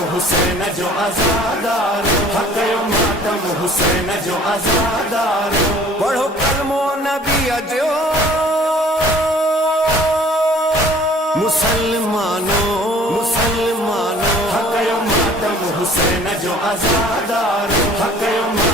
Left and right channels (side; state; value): both; normal; correlation 0.52